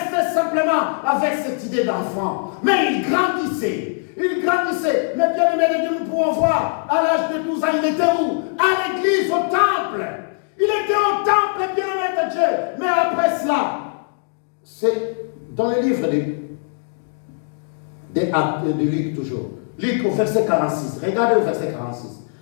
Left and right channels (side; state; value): right; silent; 60 dB below the other